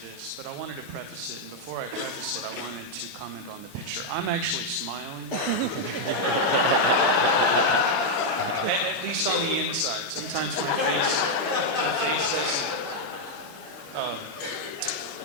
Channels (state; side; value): late; left; 16 ms